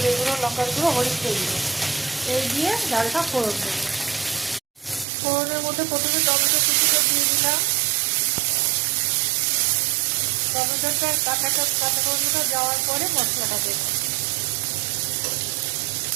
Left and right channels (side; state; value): left; drops out; at 5.1 s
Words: গুঁড়ো, লঙ্কার গুঁড়ো, হলুদ গুঁড়ো, এই দিয়ে ডালটা ফোড়ন দেবো। ফোড়নের মধ্যে প্রথমে টমেটো কুচিটা দিয়ে দিলাম। টমেটোটা কাঁচা টমেটোটা যাওয়ার পরে মশলাটা দেবো।